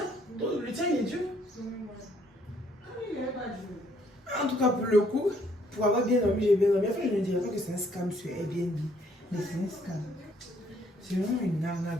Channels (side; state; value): both; normal; correlation 0.66